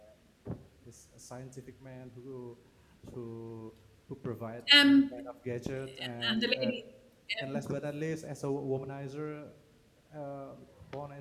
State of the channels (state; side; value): identical; both; correlation 1.00